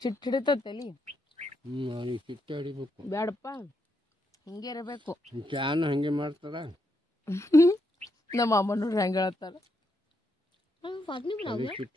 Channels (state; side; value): normal; both; correlation 0.80